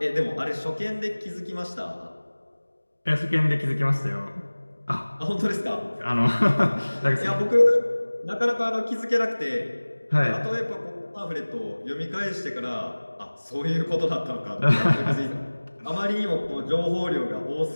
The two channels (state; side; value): inverted; both; correlation -1.00